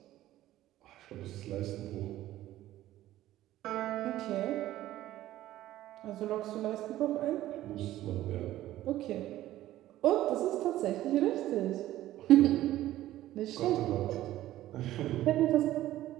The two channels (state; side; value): quieter; left; 14.4 dB